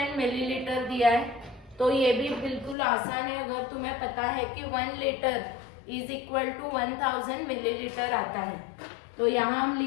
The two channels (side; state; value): right; drops out; at 2.8 s